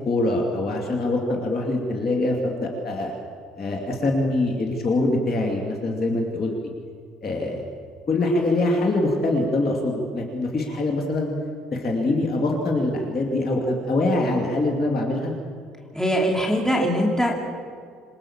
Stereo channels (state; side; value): normal; both; correlation 0.73